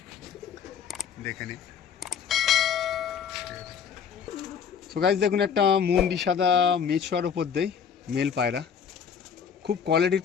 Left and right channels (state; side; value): quieter; right; 7.3 dB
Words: দেখে নিন। সো গাইস দেখুন একটা মুন্ডি সাদা মেছোয়ার ওপর দেই মেল পায়রা, খুব কোয়ালিটির